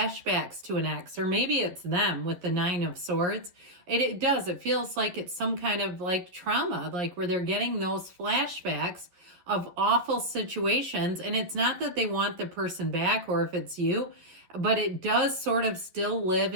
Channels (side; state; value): left; late; 11 ms